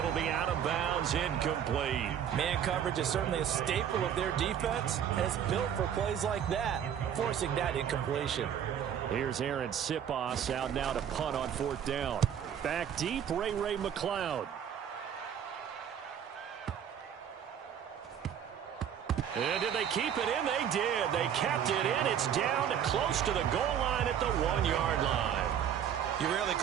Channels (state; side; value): quieter; left; 9.0 dB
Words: be out of bounds, incomplete. Man coverage is certainly a staple of their defense, and it's built for plays like that, forcing that incompletion. Here's Aaron Sipos out now to punt on 4th down. Back deep, Ray McLeod. And did they keep it in? They did. They kept it in. It's down to close to the goal line at the 1-yard line. You rarely